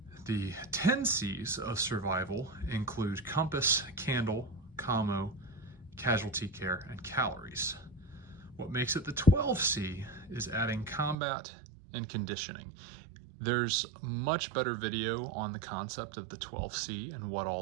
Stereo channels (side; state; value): left; drops out; at 11.2 s